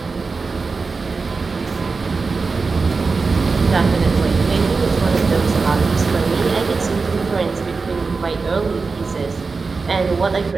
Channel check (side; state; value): left; quieter; 4.4 dB